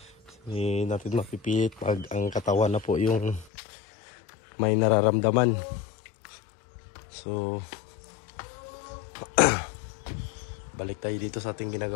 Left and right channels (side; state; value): right; drops out; at 3.5 s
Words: Hindi natin mapipilit pag ang katawan na po yung may nararamdaman. So balik tayo dito sa ating